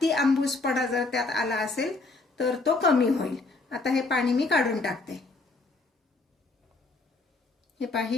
आंबूसपणा जर त्यात आला असेल तर तो कमी होईल. आता हे पाणी मी काढून टाकते. हे पहा,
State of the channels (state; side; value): quieter; right; 3.4 dB